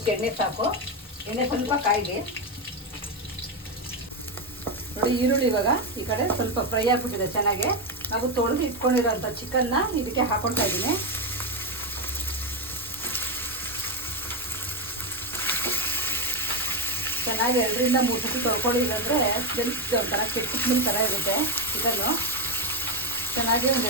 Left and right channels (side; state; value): both; normal; correlation 0.09